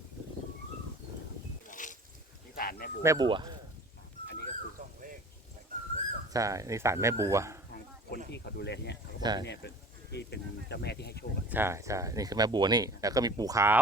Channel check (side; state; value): both; normal; correlation 0.44